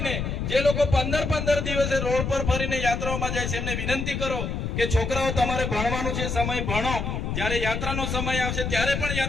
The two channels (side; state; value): left; noise; rumble, 2 dB below the sound